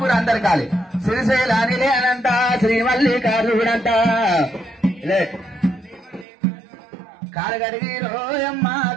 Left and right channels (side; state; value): left; drops out; at 6.2 s